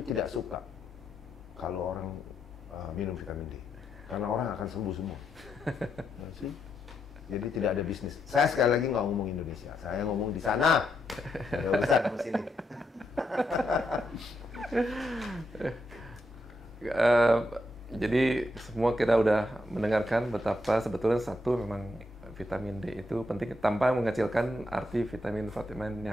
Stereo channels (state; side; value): normal; both; correlation 0.80